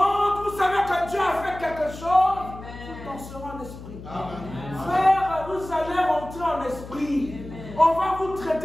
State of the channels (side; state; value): left; noise; hum, 14 dB below the sound